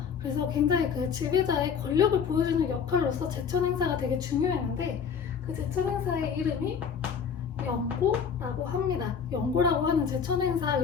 그래서 굉장히 그 지배자의 권력을 보여주는 역할로서 제천 행사가 되게 중요했는데, 그 제천 행사의 이름이 영고라고 합니다. 영고라고 하는 제천 행사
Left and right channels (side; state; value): right; quieter; 6.8 dB